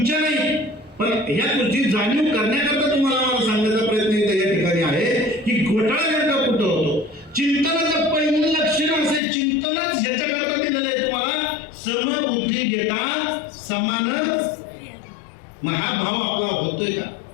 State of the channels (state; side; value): drops out; right; at 9.2 s